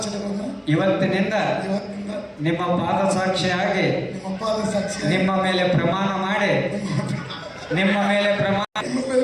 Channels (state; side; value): identical; both; correlation 1.00